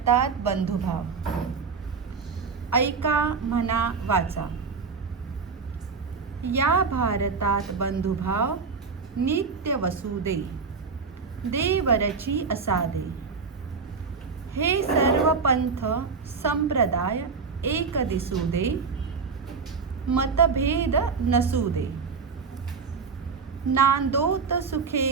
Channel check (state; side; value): quieter; left; 5.1 dB